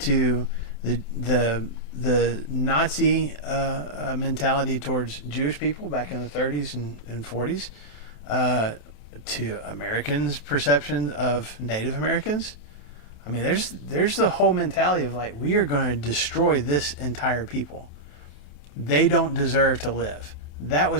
the Nazi mentality towards Jewish people back in the 30s and 40s, to Americans' perception of Native Americans. I mean, there's the whole mentality of like, we are going to destroy this entire people. They don't deserve to live. That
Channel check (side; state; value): right; late; 28 ms